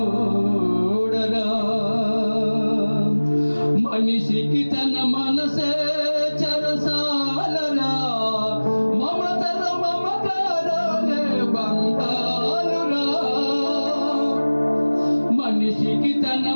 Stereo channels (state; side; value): inverted; both; correlation -1.00